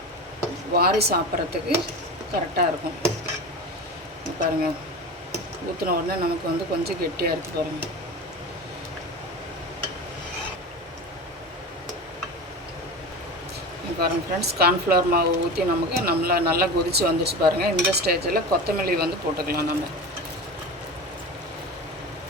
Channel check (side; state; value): both; normal; correlation 0.29